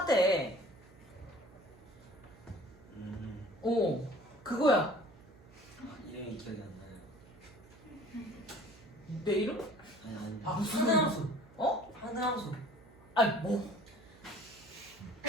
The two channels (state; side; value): noise; right; hum, 23 dB below the sound